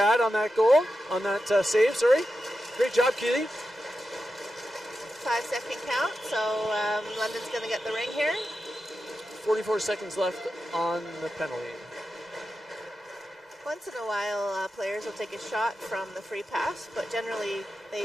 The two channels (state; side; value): normal; both; correlation 0.90